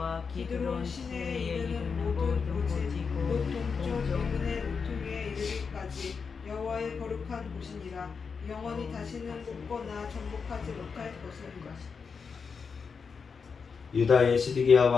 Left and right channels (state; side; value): quieter; right; 5.5 dB